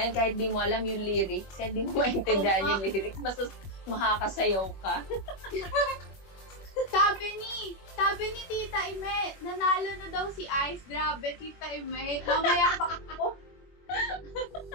yan, kahit di mo alam yung lyrics, kahit di mo maintindihan yung lyrics, basta makakasayaw ka. Sabi ni Tita Ime, nanalo na daw si Ice. Grabe, Tita Ime. Mamaya pa ako.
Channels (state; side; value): late; right; 21 ms